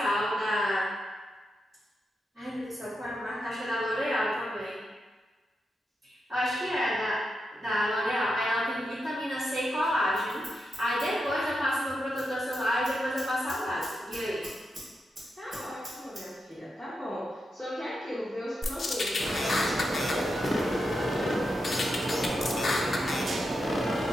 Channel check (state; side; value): normal; both; correlation 0.86